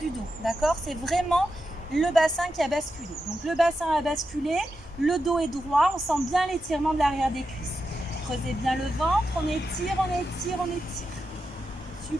dos. D'accord? C'est vraiment le bassin qui a basculé. Donc le bassin a basculé, le dos est droit. On sent bien l'étirement de l'arrière des cuisses. Creusez bien le ventre. On étire, on étire, on étire.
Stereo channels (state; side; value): normal; both; correlation 0.88